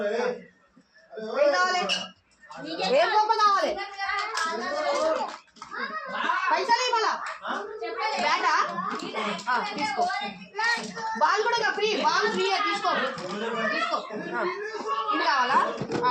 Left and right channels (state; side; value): identical; both; correlation 1.00